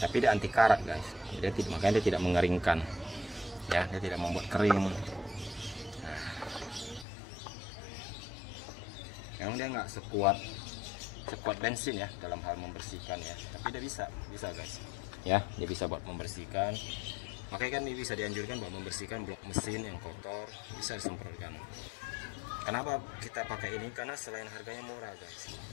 tapi dia anti karat guys. Makanya dia tidak mengeringkan ya, dia tidak membuat kering. Memang dia nggak sekuat bensin ya dalam hal membersihkan ya, tapi dia bisa guys ya, dia bisa buat membersihkan. Makanya kan ini bisa dianjurkan buat membersihkan blok mesin yang kotor, bisa disemprotkan. Kenapa kita pakai ini? Karena selain harganya murah guys,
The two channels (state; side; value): drops out; right; at 7.1 s